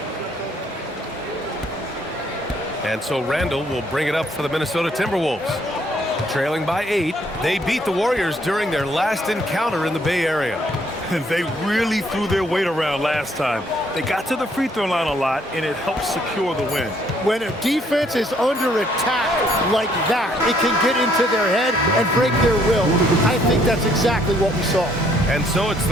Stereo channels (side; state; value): both; normal; correlation 0.67